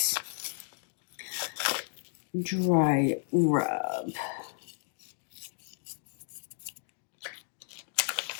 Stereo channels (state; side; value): silent; right; digital silence